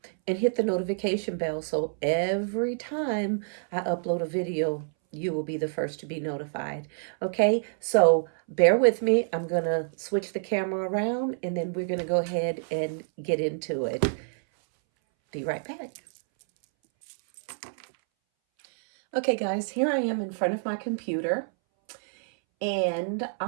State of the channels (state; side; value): silent; left; 60 dB below the other